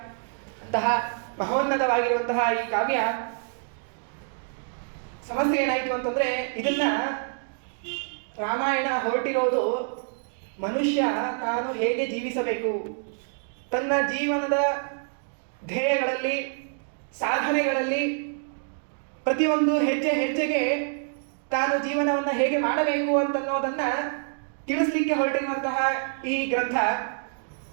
ಅಂತಹ ಮಹೋನ್ನತವಾಗಿರುವಂತಹ ಈ ಕಾವ್ಯ ಸಮಸ್ಯೆ ಏನಾಯಿತು ಅಂತಂದರೆ, ಇದನ್ನ ರಾಮಾಯಣ ಹೊರಟಿರೋದು ಮನುಷ್ಯ ತಾನು ಹೇಗೆ ಜೀವಿಸಬೇಕು, ತನ್ನ ಜೀವನದ ಧ್ಯೇಯಗಳಲ್ಲಿ ಸಾಧನೆಗಳಲ್ಲಿ ಪ್ರತಿಯೊಂದು ಹೆಜ್ಜೆ ಹೆಜ್ಜೆಗೆ ತಾನು ಜೀವನವನ್ನು ಹೇಗೆ ಮಾಡಬೇಕು ಅಂತನ್ನೋದನ್ನು ತಿಳಿಸ್ಲಿಕ್ಕೆ ಹೊರಟಿರುವಂತಹ ಈ ಗ್ರಂಥ.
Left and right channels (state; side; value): silent; left; 60 dB below the other